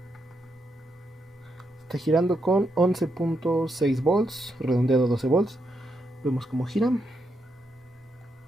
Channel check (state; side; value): normal; both; correlation 0.81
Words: está girando con 11.6 volts, redondeado a 12 volts. Vemos cómo gira.